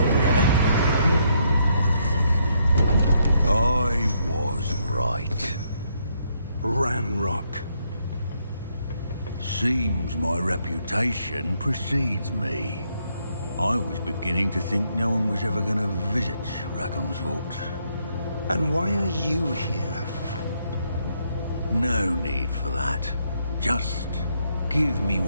I was right. Ranrock. Seems my reputation precedes me. I was beginning to think no one was ever going to visit Rackham's vault. And why are you here? No need for that. Just give me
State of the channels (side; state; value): both; inverted; correlation -0.74